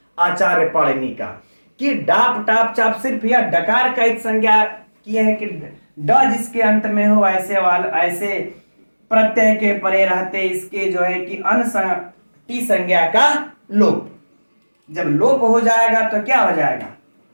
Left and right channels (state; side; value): inverted; both; correlation -1.00